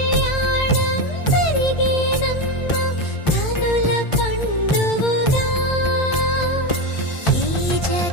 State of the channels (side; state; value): right; late; 1.5 ms